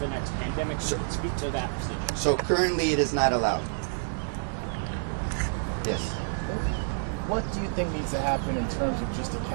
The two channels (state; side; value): silent; left; digital silence